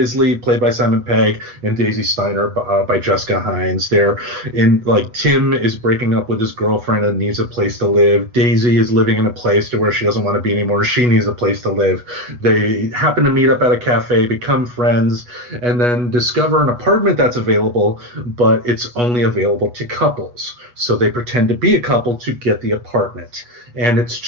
played by Simon Pegg, and Daisy Steiner by Jessica Hines. Tim is breaking up with his girlfriend and needs a place to live. Daisy is living in a place to where she doesn't want to be anymore. She needs a place to live. They happen to meet up at a cafe, become friends, and then discover an apartment that's available, but it's only available to couples. So they pretend to be a couple to get the apartment. And it's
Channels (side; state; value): left; late; 8.2 ms